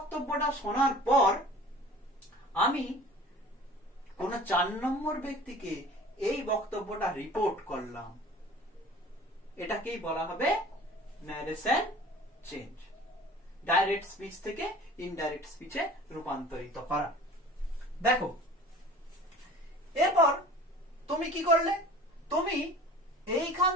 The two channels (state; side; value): normal; both; correlation 0.44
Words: শোনার পর আমি কোন 4 নম্বর ব্যক্তিকে এই বক্তব্যটা রিপোর্ট করলাম। এটাকেই বলা হবে ন্যারেশন চেঞ্জ। ডাইরেক্ট স্পিচ থেকে ইনডাইরেক্ট স্পিচে রূপান্তরিত করা। দেখো এরপর তুমি কি করলে? তুমি এইখান